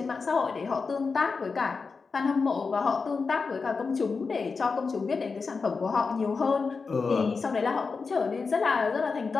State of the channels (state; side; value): quieter; right; 4.7 dB